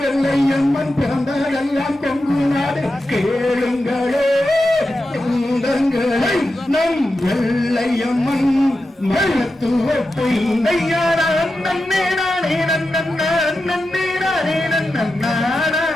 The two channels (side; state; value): both; normal; correlation 0.90